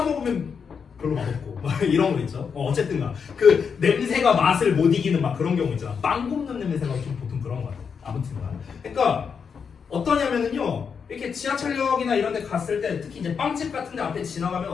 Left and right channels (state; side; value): quieter; right; 6.3 dB